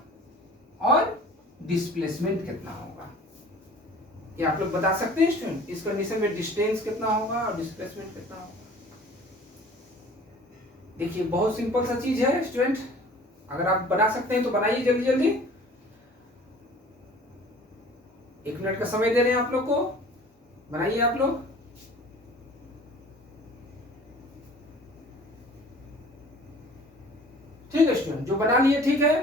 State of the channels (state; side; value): normal; both; correlation 0.47